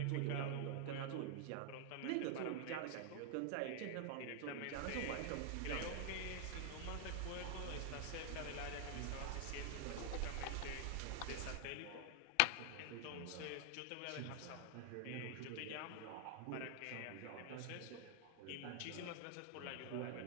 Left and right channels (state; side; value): different; both; correlation 0.00